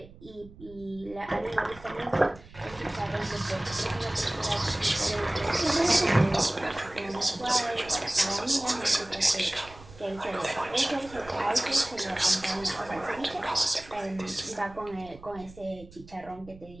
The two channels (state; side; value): noise; right; rumble, 20 dB below the sound